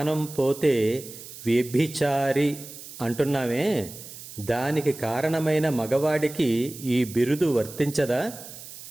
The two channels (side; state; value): right; noise; hiss, 14 dB below the sound